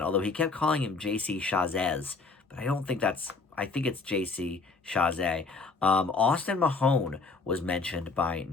although he kept calling him J.C. Chazez, but I don't think that's, I think it's J.C. Chazé. Austin Mahone was mentioned by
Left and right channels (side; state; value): right; quieter; 4.1 dB